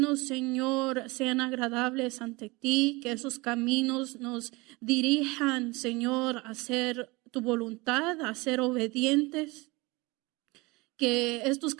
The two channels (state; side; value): quieter; left; 24.1 dB